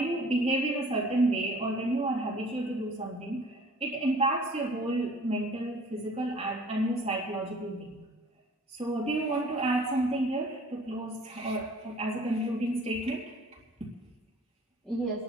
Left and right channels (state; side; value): normal; both; correlation 0.51